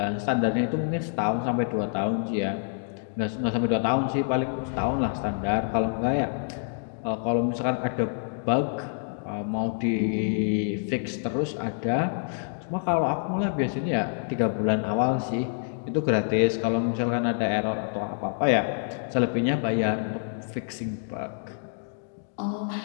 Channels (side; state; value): right; silent; digital silence